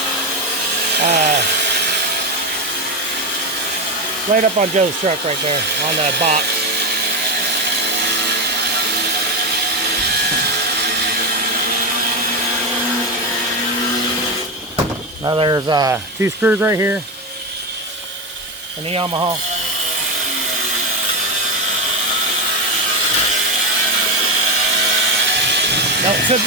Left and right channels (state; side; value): normal; both; correlation 0.13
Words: Right up on Joe's truck right there, on the box. Now there's 2 screws right here in the Yamaha. Don't set